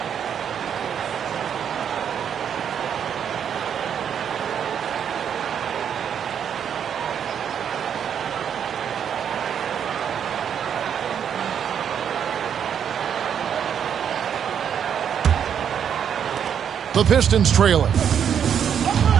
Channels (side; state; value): left; quieter; 8.3 dB